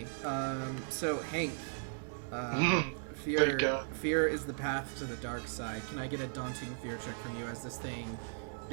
so Hank, fear is the path to the dark side. Can I get a daunting fear check from you as this thing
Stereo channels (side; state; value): left; silent; digital silence